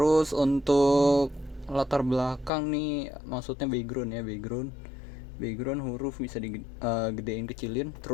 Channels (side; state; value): right; drops out; at 2.5 s